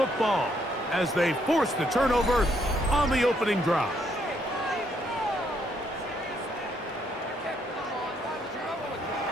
as they force the turnover on the opening drive.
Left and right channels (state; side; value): normal; both; correlation 0.72